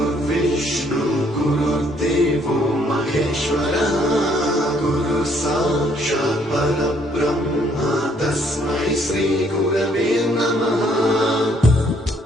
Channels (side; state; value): both; normal; correlation 0.66